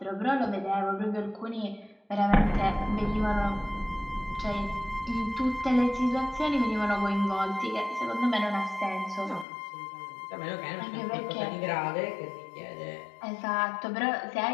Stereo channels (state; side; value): drops out; right; at 9.5 s